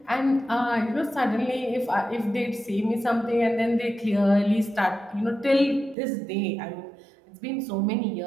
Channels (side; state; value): left; drops out; at 6.0 s